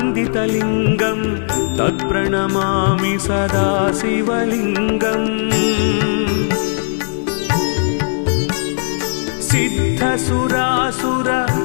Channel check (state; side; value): silent; right; digital silence